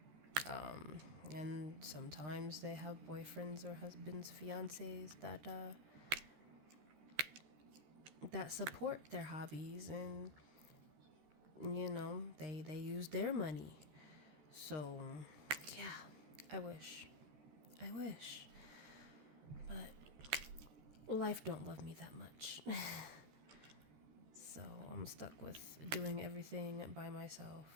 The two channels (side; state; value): left; late; 13 ms